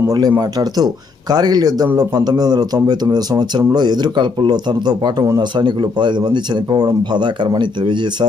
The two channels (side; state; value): right; quieter; 4.4 dB